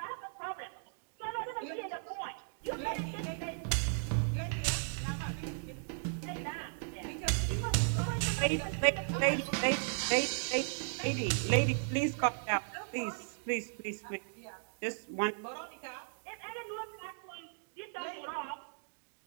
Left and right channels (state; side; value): silent; left; digital silence